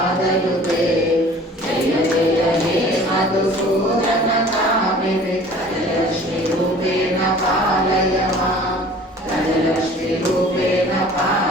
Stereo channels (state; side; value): normal; both; correlation 0.48